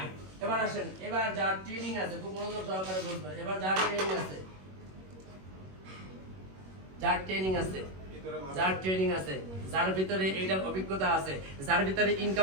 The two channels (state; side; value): late; left; 21 ms